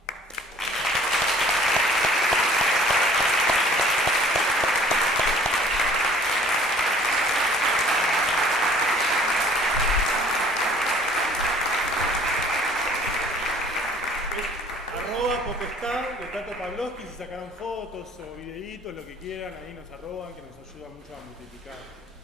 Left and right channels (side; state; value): both; normal; correlation 0.53